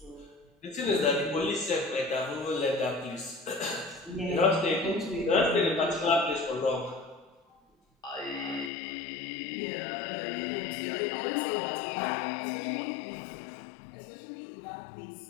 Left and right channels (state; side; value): drops out; right; at 8.7 s